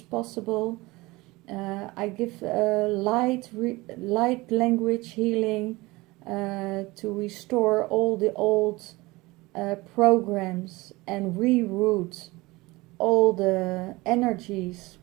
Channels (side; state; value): left; quieter; 21.6 dB